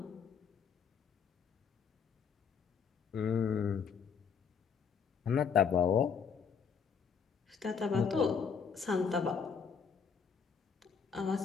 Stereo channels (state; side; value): quieter; right; 6.4 dB